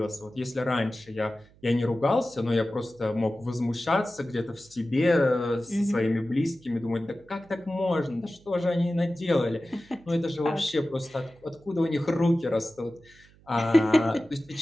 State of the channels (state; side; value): noise; right; hum, 27 dB below the sound